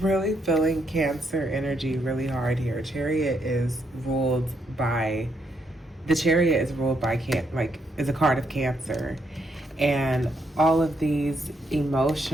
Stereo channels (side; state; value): both; normal; correlation 0.77